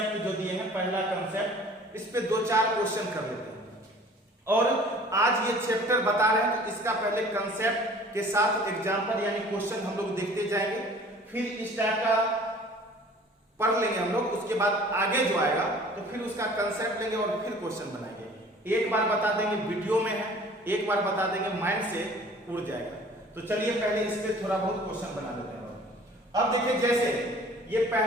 जो दिए हैं, पहला कंसेप्ट, इस पे 2-4 क्वेश्चन कर लेते हैं और आज ये चैप्टर बता रहे हैं तो इसका पहले कंसेप्ट के साथ एग्जांपल यानी क्वेश्चन हम लोग देखते जाएंगे, फिर इस टाइप का पढ़ लेंगे हम लोग, उसके बाद आगे जो आएगा तो फिर उसका कंसेप्ट लेंगे और फिर क्वेश्चन बनाएंगे। एक बार बता देंगे वीडियो में है, एक बार बता देंगे माइंड से उड़ जाएगा। तो चलिए पहले इस पे थोड़ा बहुत क्वेश्चन बना लेते हैं। अब देखिए जैसे ये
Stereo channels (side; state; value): both; normal; correlation 0.49